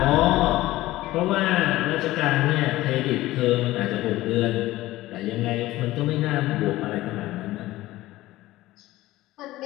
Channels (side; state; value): right; quieter; 16.9 dB